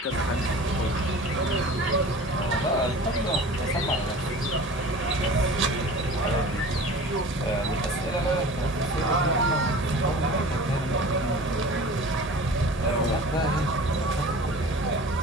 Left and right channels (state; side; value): normal; both; correlation 0.40